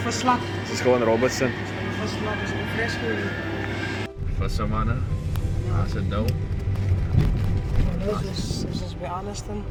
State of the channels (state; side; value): identical; both; correlation 1.00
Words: visslap. Het is gewoon Robertson. Ons gaan die visslap, ons gaan die fresco. Vissermanne. Ja, is het nou. Ons is bij Arniston.